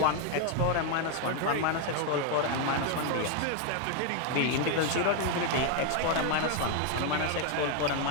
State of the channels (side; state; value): both; different; correlation 0.01